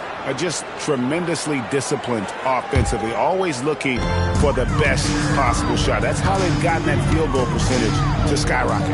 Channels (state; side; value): identical; both; correlation 1.00